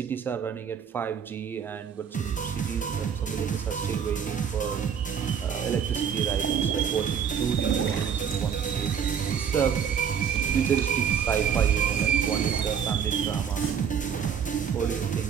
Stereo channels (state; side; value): quieter; left; 7.6 dB